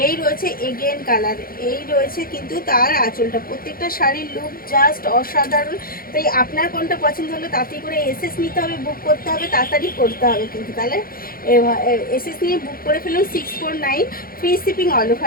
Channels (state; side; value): late; right; 0.42 ms